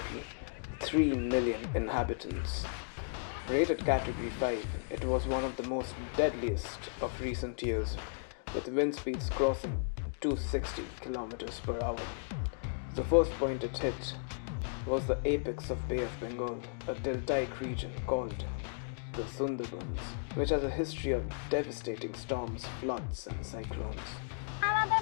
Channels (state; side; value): silent; right; digital silence